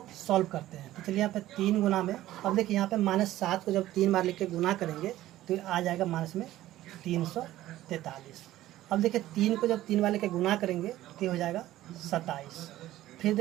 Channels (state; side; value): quieter; left; 14.7 dB